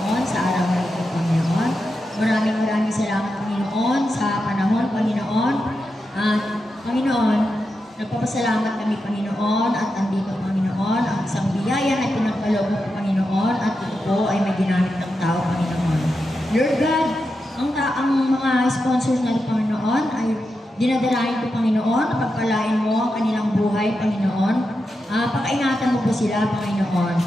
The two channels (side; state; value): both; normal; correlation 0.88